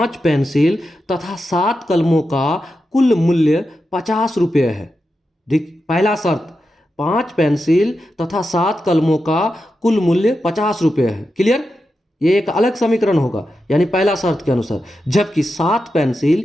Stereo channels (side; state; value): both; normal; correlation 0.89